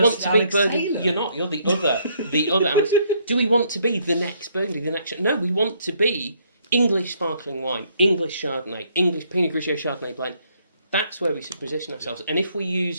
to be Burgundy? You're not. You're the other Alex. Do we want to be the next Burgundy, the next? No, we want to be English sparkling wine, English Chardonnay, English Pinot Grigio Chardonnay blend. That's where we should position ourselves. And if we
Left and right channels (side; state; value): both; inverted; correlation -0.68